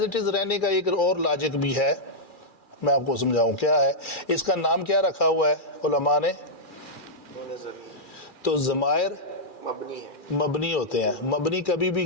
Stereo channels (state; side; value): late; right; 2.4 ms